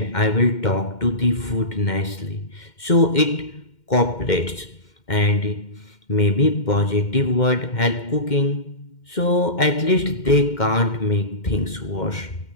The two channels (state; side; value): late; right; 2.1 ms